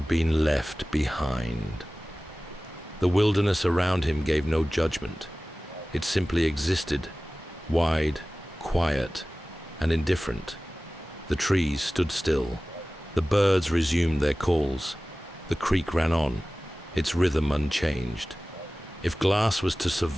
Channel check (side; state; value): both; normal; correlation 0.97